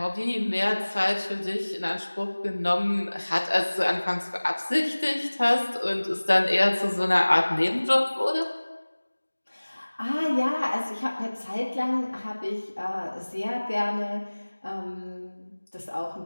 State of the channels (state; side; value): inverted; both; correlation -1.00